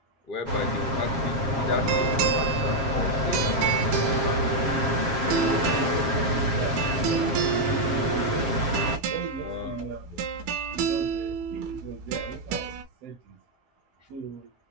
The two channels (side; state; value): left; late; 7.4 ms